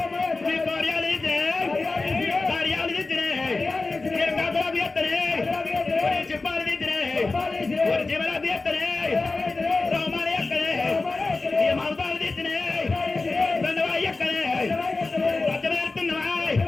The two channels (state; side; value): quieter; right; 3.6 dB